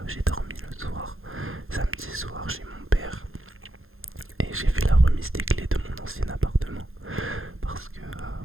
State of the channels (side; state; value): left; late; 0.60 ms